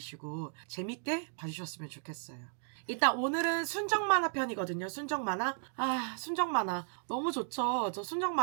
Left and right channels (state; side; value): silent; left; 55 dB below the other